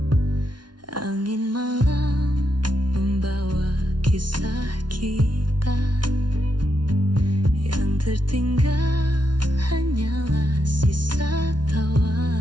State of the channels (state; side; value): late; left; 0.70 ms